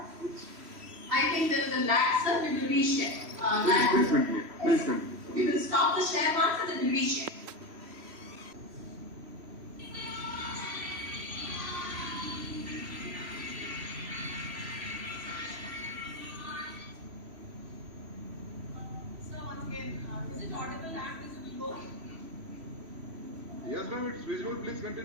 I think there is a lag, sir. We will reshare. Please continue. Please continue. We will stop the share once and then we will reshare. So once again, is it audible and visible? Yes, ma'am, it's visible. Please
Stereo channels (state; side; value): late; left; 3.1 ms